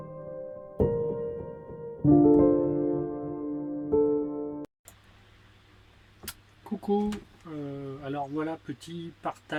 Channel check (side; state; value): both; identical; correlation 1.00